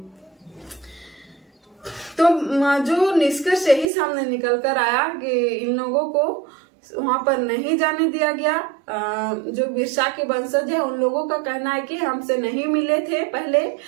तो जो निष्कर्ष यही सामने निकल कर आया कि इन लोगों को वहां पर नहीं जाने दिया गया। जो बिरसा के वंशज है उन लोगों का कहना है कि हमसे नहीं मिले थे पहले,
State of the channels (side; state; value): left; drops out; at 3.9 s